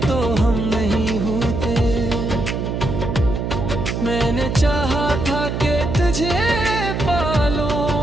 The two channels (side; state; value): right; noise; hum, 3 dB below the sound